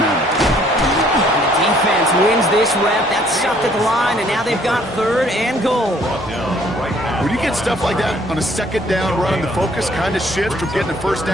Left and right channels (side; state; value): both; normal; correlation 0.61